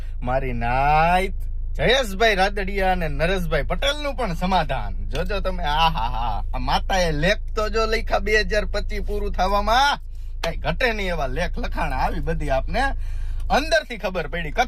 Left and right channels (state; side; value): identical; both; correlation 1.00